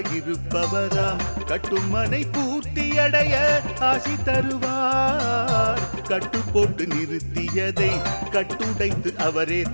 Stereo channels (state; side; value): inverted; both; correlation -1.00